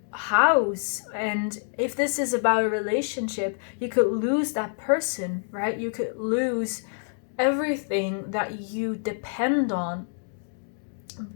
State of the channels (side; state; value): right; silent; digital silence